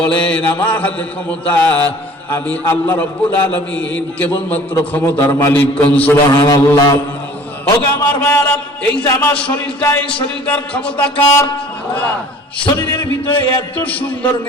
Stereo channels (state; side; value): normal; both; correlation 0.48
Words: বলেন, আমার হাতে ক্ষমতা, আমি আল্লাহ রাব্বুল আলামিন কেবলমাত্র ক্ষমতার মালিক। কোন সুবহানাল্লাহ। ওগো আমার মায়েরা, এই যে আমার শরীরটা, এই শরীরটার ক্ষমতা কার? আল্লাহ। শরীরের ভিতরে এত সুন্দর